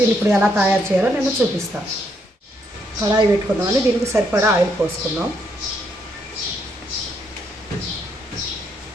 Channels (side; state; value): both; normal; correlation 0.75